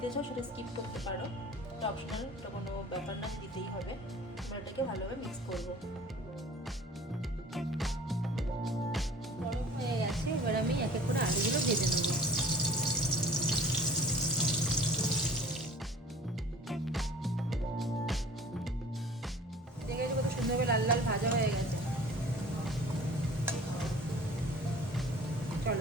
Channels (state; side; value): normal; both; correlation 0.46